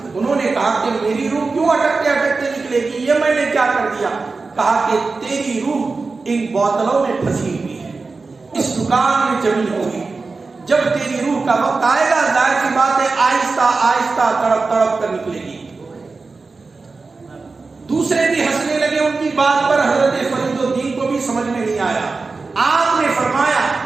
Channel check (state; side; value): quieter; left; 4.0 dB